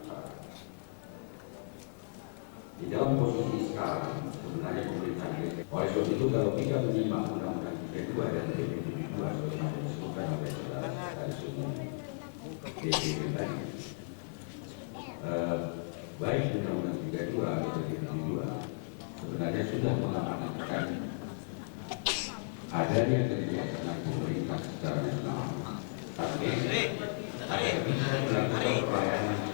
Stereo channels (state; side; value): silent; right; digital silence